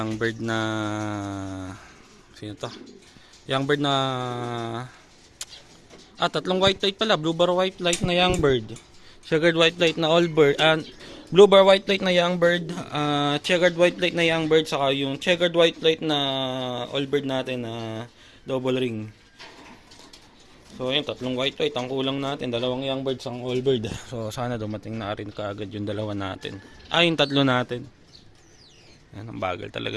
sino to? Young bird na 3 white light pala, blue bar white light na young bird. Checkered white light na all bird, blue bar white light na young bird, checkered white light na young bird, saka yung checkered white light na all bird natin na double ring. So ayun, 3 white light ang kulang natin, 2 young birds, ang all bird. So sana dumating na rin kaagad yung 2 natin. Yung 3 natin. Yan, ang bagal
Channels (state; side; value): identical; both; correlation 1.00